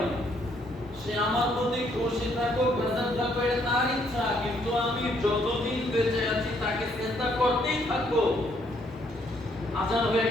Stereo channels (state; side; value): normal; both; correlation 0.69